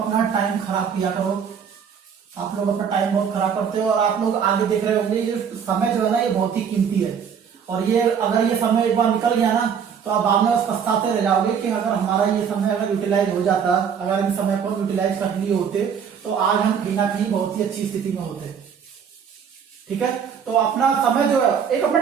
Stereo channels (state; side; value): quieter; left; 7.3 dB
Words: टाइम खराब किया करो। आप लोग अपना टाइम बहुत खराब करते हो और आप लोग आगे देख रहे होंगे ये समय जो है ना ये बहुत ही कीमती है, और ये अगर ये समय एक बार निकल गया ना तो आप बाद में बस पछताते रह जाओगे कि अगर हमारा ये समय अगर यूटिलाइज हो जाता, अगर इन समय को यूटिलाइज कर लिए होते तो आज हम कहीं ना कहीं बहुत ही अच्छी स्थिति में होते, ठीक है। तो अपना समय जो है एक अपना